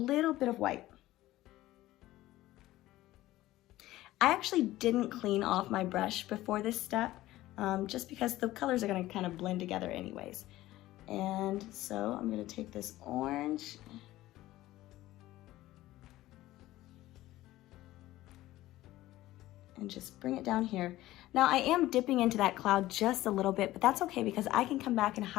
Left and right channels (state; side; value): quieter; right; 16.1 dB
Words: bit of white. I actually didn't clean off my brush before this step, just because the colors are going to kind of blend together anyways. And so I'm going to take this orange and just bring it down here. Now I am dipping into that cloud just a little bit, but that's okay because I can come back and